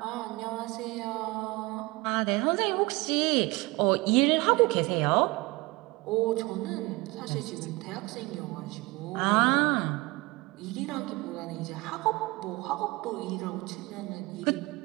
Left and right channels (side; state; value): left; quieter; 23.1 dB